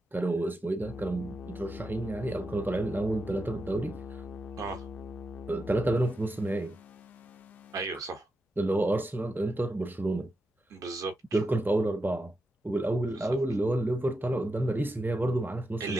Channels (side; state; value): both; normal; correlation 0.87